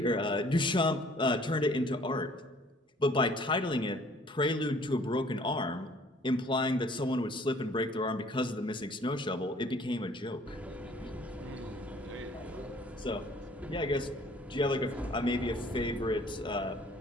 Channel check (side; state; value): both; normal; correlation 0.56